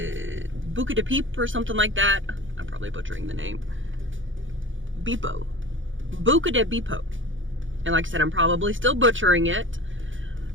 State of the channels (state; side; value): late; left; 0.57 ms